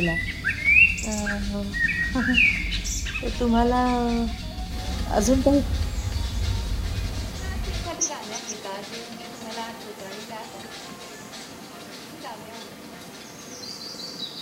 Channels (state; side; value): identical; both; correlation 1.00